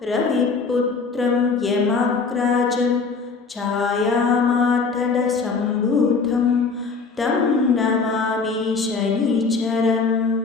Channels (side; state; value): right; quieter; 4.6 dB